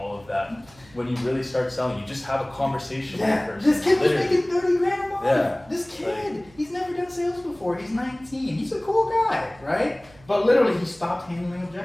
of that. When you really start selling, you just have a conversation with the person. This kid was Literally. making 30 grand a month. Yeah. This kid, he's never done sales before. He's 19. He's a cool guy, right? But literally, he stopped handling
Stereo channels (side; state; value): right; noise; hum, 26 dB below the sound